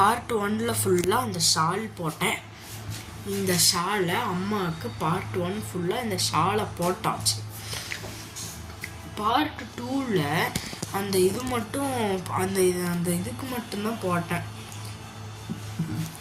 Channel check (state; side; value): identical; both; correlation 1.00